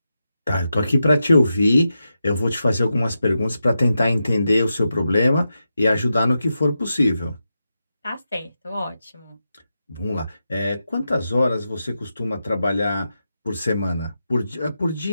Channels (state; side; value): inverted; both; correlation -0.88